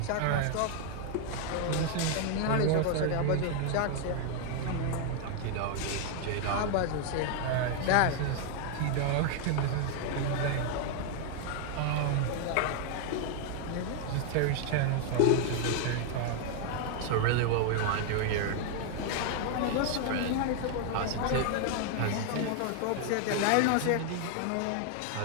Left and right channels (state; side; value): different; both; correlation 0.00